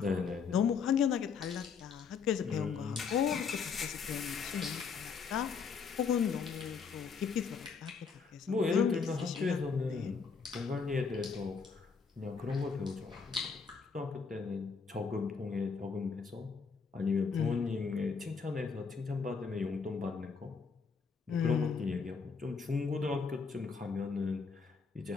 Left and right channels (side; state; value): right; quieter; 5.6 dB